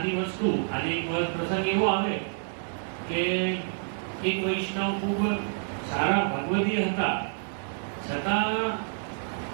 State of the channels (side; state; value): left; silent; 59 dB below the other